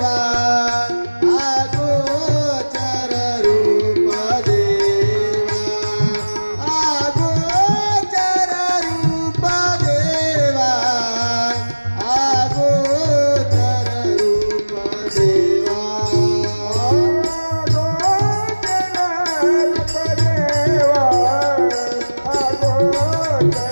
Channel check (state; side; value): inverted; both; correlation -1.00